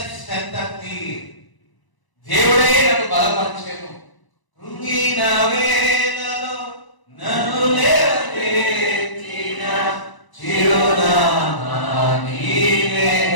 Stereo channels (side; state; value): right; late; 1.0 ms